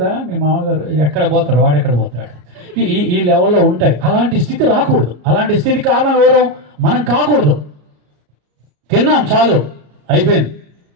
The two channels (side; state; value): left; late; 34 ms